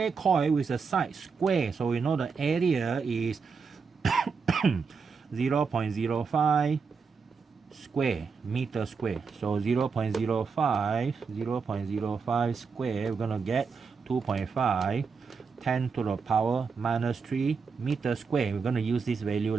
coil with a side square. So we know the area is 0.05 square, meter square. So 0.05 square, we're gonna get 2.5, 10 to the power minus 3 meter square. We're gonna use this value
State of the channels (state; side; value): quieter; left; 5.3 dB